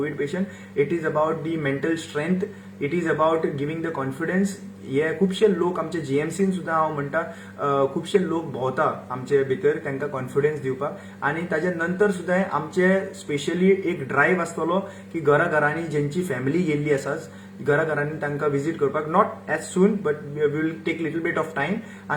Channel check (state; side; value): identical; both; correlation 1.00